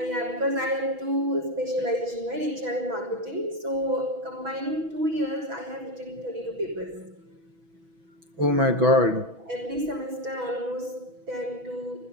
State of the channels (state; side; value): late; left; 6.1 ms